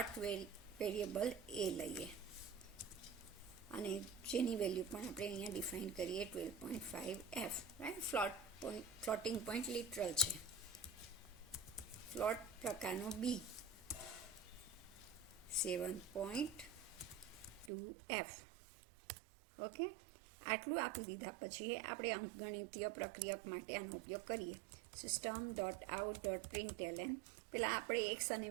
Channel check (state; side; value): drops out; left; at 17.7 s